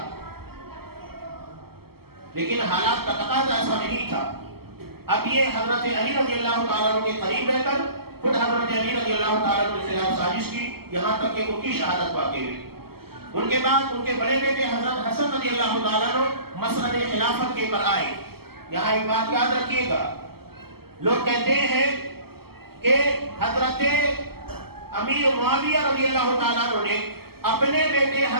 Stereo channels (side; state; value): left; late; 0.95 ms